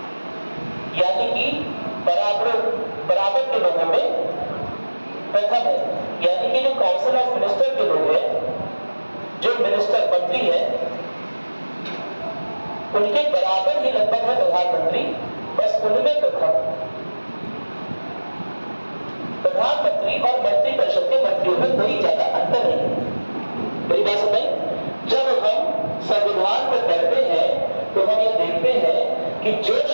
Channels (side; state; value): both; inverted; correlation -1.00